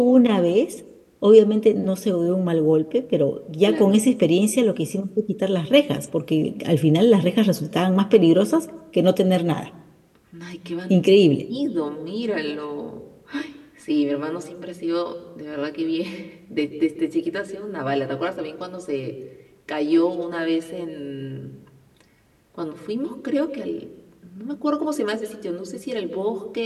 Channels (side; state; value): both; identical; correlation 1.00